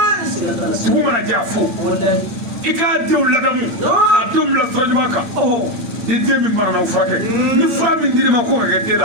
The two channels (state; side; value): late; left; 8.6 ms